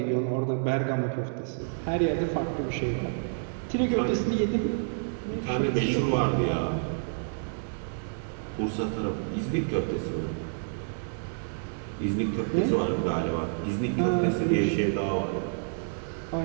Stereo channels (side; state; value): left; silent; digital silence